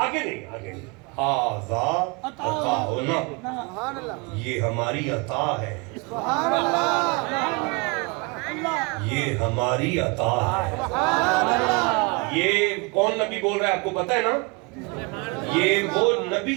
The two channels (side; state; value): left; quieter; 29.4 dB